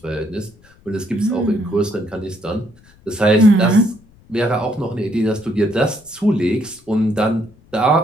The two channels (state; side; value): noise; left; rumble, 28 dB below the sound